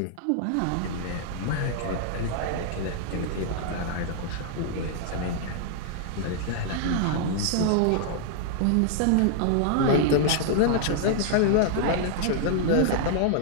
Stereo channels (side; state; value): both; different; correlation -0.01